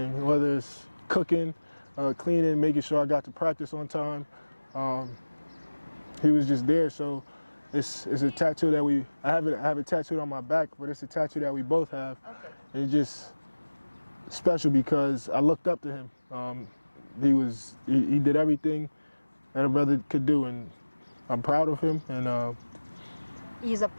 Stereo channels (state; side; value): inverted; both; correlation -1.00